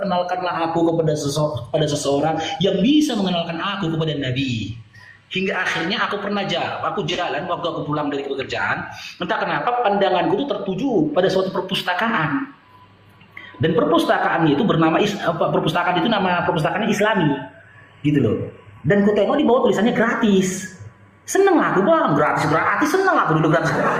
aku kepada seseorang yang bisa mengenalkan aku kepada Nabi. Hingga akhirnya aku jalan waktu aku pulang dari pekerjaan, entah kenapa pandanganku itu tertuju pada suatu perpustakaan. Dan perpustakaan itu bernama perpustakaan itu nama perpustakaannya Islami. Gitu loh. Dan ku tengok di bawah tulisannya gratis. Seneng aku bang, gratis seneng aku dulu gratis.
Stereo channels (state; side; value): identical; both; correlation 1.00